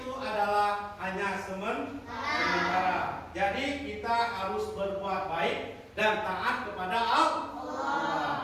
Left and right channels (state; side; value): identical; both; correlation 1.00